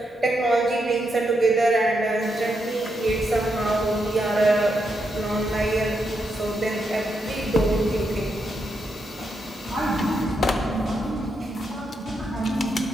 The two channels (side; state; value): both; normal; correlation 0.82